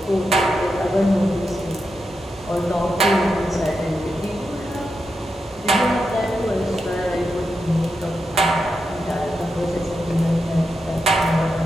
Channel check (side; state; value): both; normal; correlation 0.87